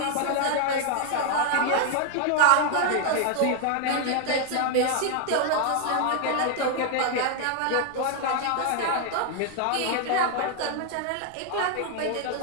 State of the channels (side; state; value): both; different; correlation 0.00